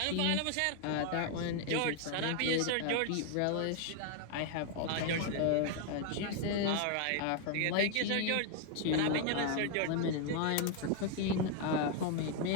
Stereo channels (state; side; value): different; both; correlation 0.00